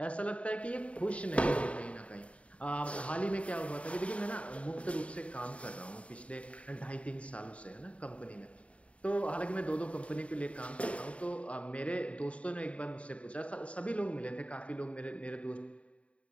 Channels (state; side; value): late; right; 0.064 ms